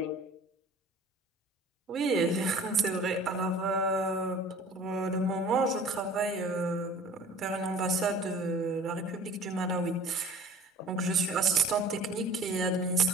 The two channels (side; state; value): both; normal; correlation 0.45